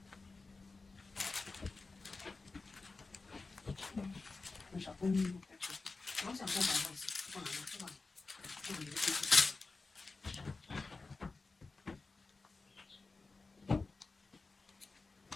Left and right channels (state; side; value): quieter; right; 3.8 dB